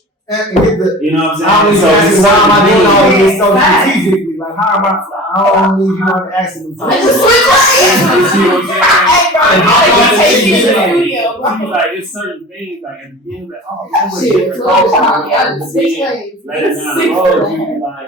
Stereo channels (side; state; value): both; normal; correlation 0.38